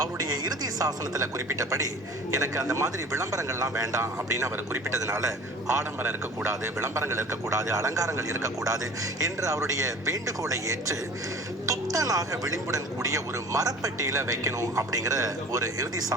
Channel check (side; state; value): both; normal; correlation 0.44